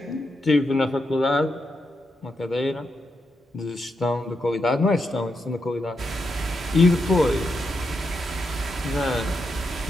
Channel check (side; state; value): both; normal; correlation 0.84